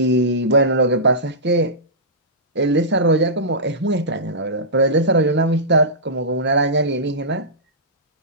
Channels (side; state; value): both; normal; correlation -0.16